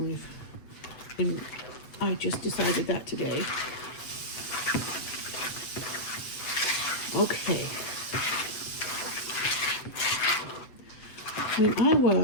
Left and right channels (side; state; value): right; late; 8.0 ms